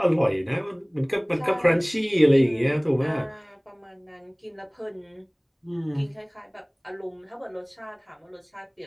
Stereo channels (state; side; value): identical; both; correlation 1.00